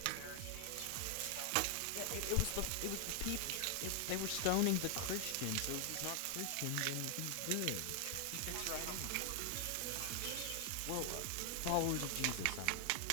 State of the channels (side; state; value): both; different; correlation 0.00